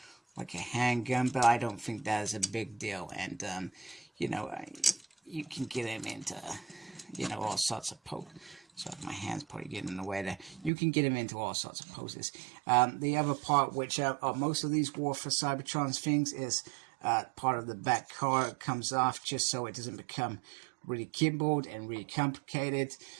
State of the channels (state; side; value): drops out; left; at 10.7 s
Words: like a handgun, but I don't think that is a big deal. And you know, you can get him into, you know, all sorts of poses. Sorry, my hand's probably getting in the way there. You can get him into all sorts of poses. The other part, which most of these War for Cybertron's things, is part of the back car comes off just so it doesn't become really keyboard and really complicated,